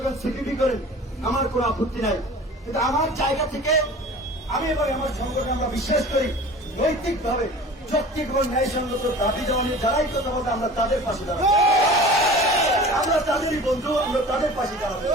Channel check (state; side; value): normal; both; correlation 0.40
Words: করেন, সিপিবি করেন, আমার কোন আপত্তি নাই। কিন্তু আমার জায়গা থেকে আমি এবং আমার সংগঠন আমরা বিশ্বাস করি, নৈতিকভাবে যৌক্তিক এবং ন্যায়সঙ্গত দাবি দেওয়া নিয়ে যারাই কথা বলতে, আমরা তাদের পাশে দাঁড়াবো। আমরা তাদেরই বন্ধু, আমরা তাদের পাশে দাঁড়াবো।